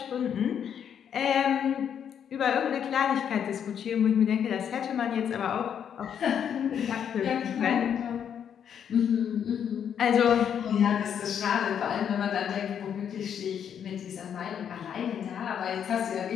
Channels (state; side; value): quieter; right; 8.5 dB